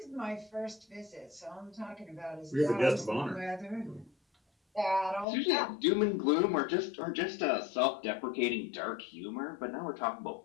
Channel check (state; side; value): drops out; right; at 5.2 s